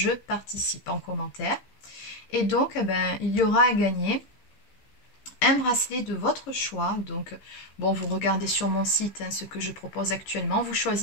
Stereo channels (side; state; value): right; late; 15 ms